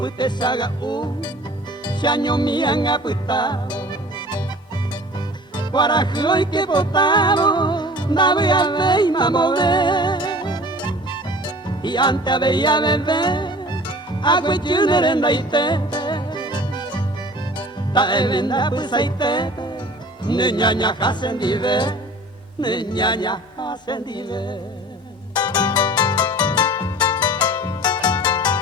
te saga se año me han apitado. Guarajo y que botado, da voy a ver y mamoré. Y antes veía beber, agua y chunerenda y tete. Ta elenda pues hay tete, niñaña hacen dive, niñaña hacen dive.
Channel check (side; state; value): both; normal; correlation 0.44